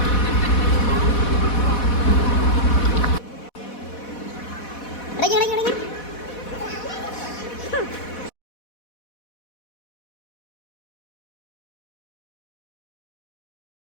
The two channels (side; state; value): right; late; 4.1 ms